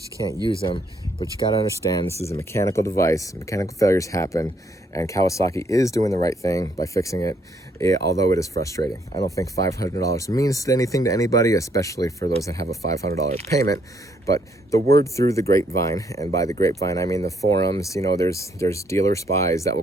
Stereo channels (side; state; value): both; normal; correlation 0.70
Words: you can't use them. But you got to understand, this is a mechanical device. Mechanical failures happen, and Kawasaki is doing the right thing by fixing it, although it is frustrating. I don't think $500 means anything to anybody, especially for those that have a $500 payment. But the word through the grapevine, and by the grapevine I mean the forums, you know, there's dealer spies that will